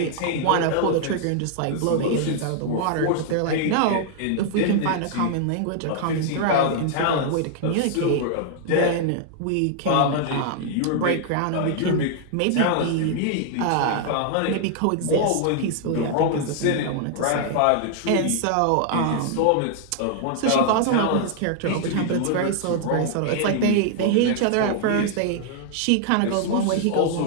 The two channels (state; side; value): different; both; correlation 0.00